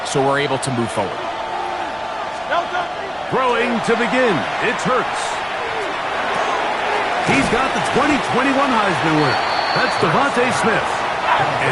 so we're able to move forward. Throwing to begin, it's Hurts. He's got the 2021 Heisman winner. That's Devontae Smith.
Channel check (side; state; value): both; identical; correlation 1.00